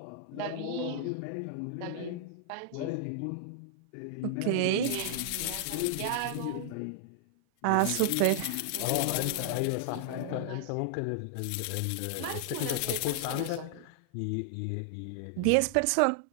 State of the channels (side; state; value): both; different; correlation -0.01